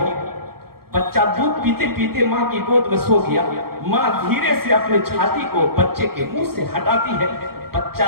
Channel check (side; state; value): left; late; 0.94 ms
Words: बच्चा दूध पीते पीते माँ की गोद में सो गया, माँ धीरे से अपने छाती को बच्चे के मुंह से हटाती है,